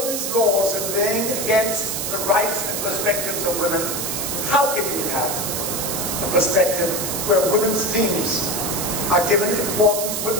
these laws and weighing against the rights and perspectives of women, how can you have a perspective where women's themes are given importance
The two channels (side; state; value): right; noise; hiss, 2 dB below the sound